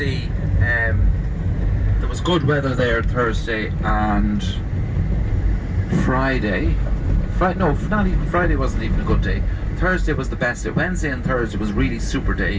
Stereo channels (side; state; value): both; identical; correlation 1.00